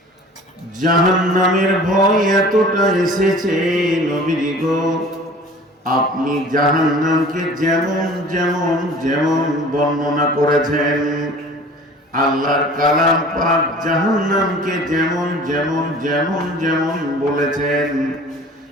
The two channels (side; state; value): both; normal; correlation 0.45